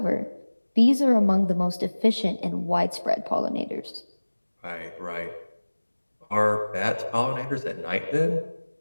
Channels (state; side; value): inverted; both; correlation -1.00